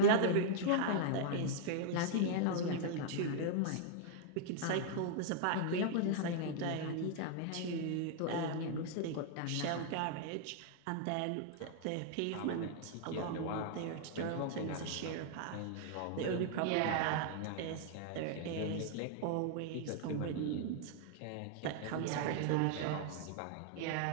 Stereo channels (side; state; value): both; different; correlation -0.01